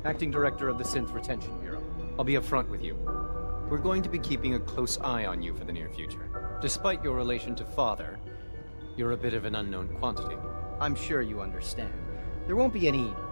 Acting Director of the Synth Retention Bureau. I'll be upfront with you. We're going to be keeping a close eye on you for the near future. Despite your relation to Father, you're a bit of an unknown quantity. I'm sure you understand. There won't be any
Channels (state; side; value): inverted; both; correlation -1.00